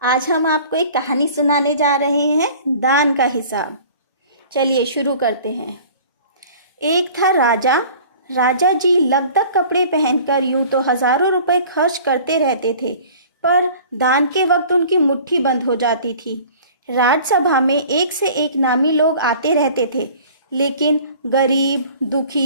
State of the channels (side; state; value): both; inverted; correlation -0.46